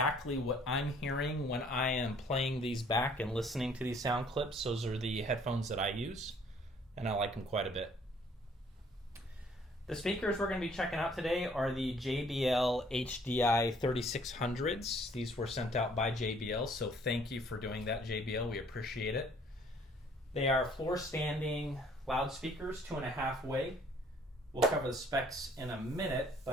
what I'm hearing when I am playing these back and listening to these sound clips, those are the headphones that I use, and I like them quite a bit. The speakers we're going to be checking out today are the JBL HDI-3600s. These were sent out by JBL, so thank you for doing that, JBL. We appreciate it. They are floor standing loudspeakers, 2.5 way. We'll cover the specs in a minute,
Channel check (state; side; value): normal; both; correlation 0.59